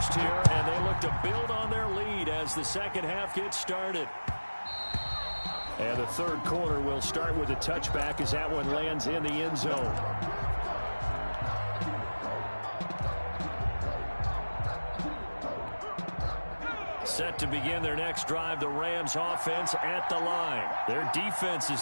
here, and they look to build on their lead as the second half gets started. And the third quarter will start with a touchback as that one lands in the end zone. Set to begin their next drive, the Rams offense at the line. Their defense has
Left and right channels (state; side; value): inverted; both; correlation -1.00